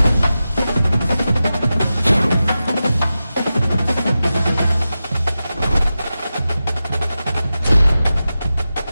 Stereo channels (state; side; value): inverted; both; correlation -0.93